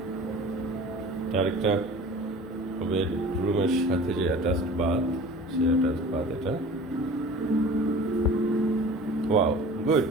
আরেকটা বেডরুমের সাথে যে অ্যাটাচড বাথ, সে অ্যাটাচড বাথ এটা। Wow, good.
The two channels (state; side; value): normal; both; correlation 0.42